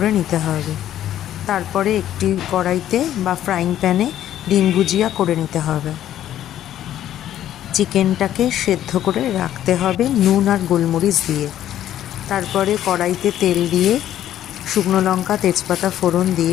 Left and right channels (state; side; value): quieter; right; 11.8 dB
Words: নিতে হবে। তারপরে একটি কড়াইতে বা ফ্রাইং প্যানে ডিম ভুজিয়া করে নিতে হবে। চিকেনটাকে সেদ্ধ করে রাখতে হবে নুন আর গোলমরিচ দিয়ে। তারপরে কড়াইতে তেল দিয়ে শুকনো লঙ্কা, তেজপাতা ফোড়ন